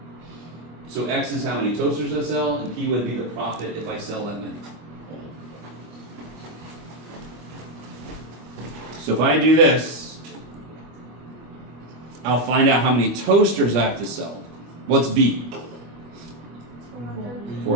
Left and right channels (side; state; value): left; late; 25 ms